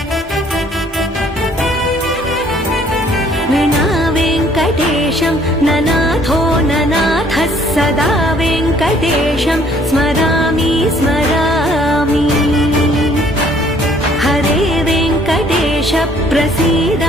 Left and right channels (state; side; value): normal; both; correlation 0.60